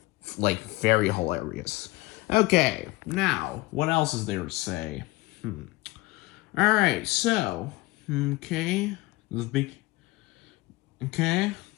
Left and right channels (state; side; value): quieter; right; 21.0 dB